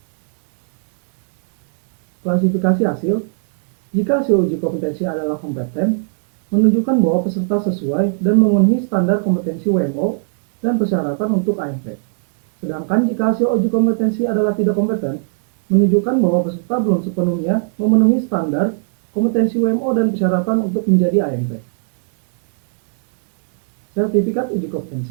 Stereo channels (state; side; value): silent; left; digital silence